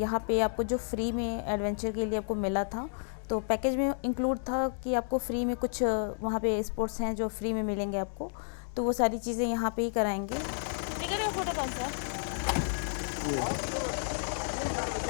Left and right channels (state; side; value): silent; right; digital silence